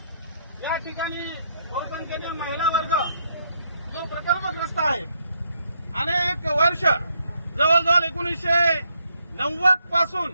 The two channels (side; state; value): both; inverted; correlation -0.75